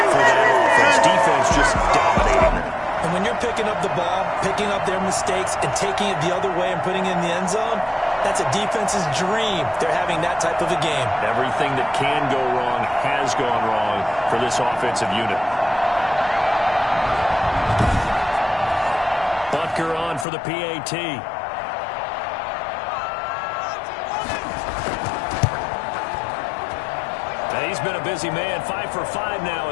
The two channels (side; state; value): right; drops out; at 20.2 s